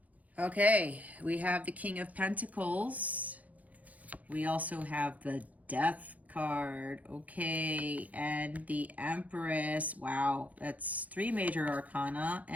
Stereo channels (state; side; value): late; left; 0.074 ms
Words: Okay, we have the King of Pentacles. We also have the Death card. Okay, and the Empress. Wow, that's 3 major arcana,